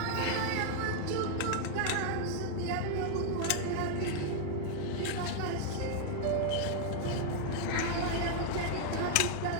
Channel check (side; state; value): both; different; correlation 0.00